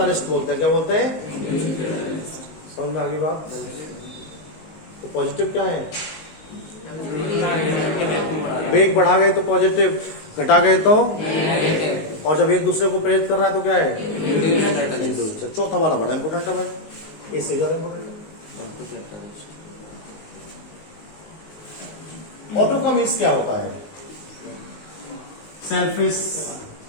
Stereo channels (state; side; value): late; right; 19 ms